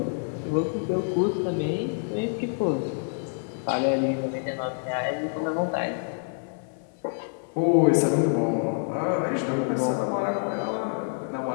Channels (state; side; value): silent; right; 60 dB below the other